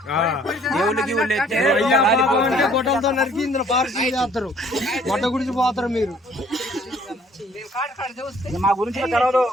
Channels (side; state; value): both; normal; correlation 0.58